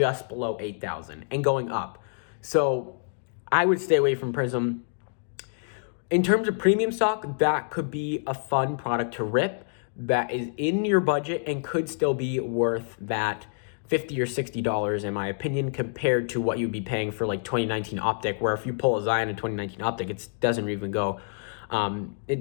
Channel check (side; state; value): right; silent; digital silence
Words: below 8,000 and going up. So I would stay away from Prism. In terms of premium stock, that could be a fun product to rip that is in your budget and could still be worth that $50 or $60 in my opinion, compared to what you'd be paying for like 2019 Optic, where if you pull a Zion in 2019 Optic, it doesn't even go.